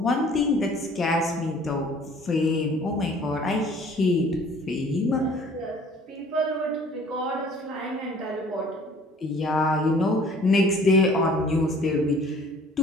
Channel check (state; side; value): normal; both; correlation 0.53